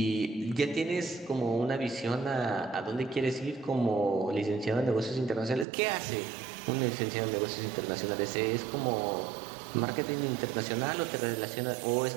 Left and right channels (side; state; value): left; drops out; at 5.7 s